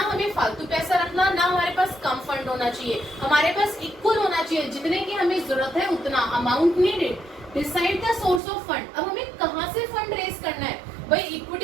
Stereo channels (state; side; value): drops out; left; at 8.4 s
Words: फालतू पैसा रखना, ना हमारे पास कम फंड होना चाहिए, हमारे पास इक्वल होना चाहिए, जितने की हमें जरूरत है उतना, amount needed. Decide the source of fund, अब हमें कहाँ से फंड रेज करना है, भाई